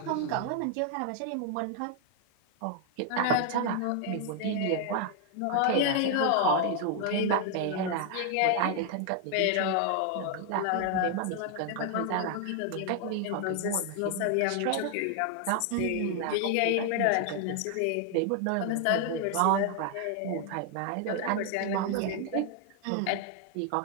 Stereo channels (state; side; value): different; both; correlation 0.00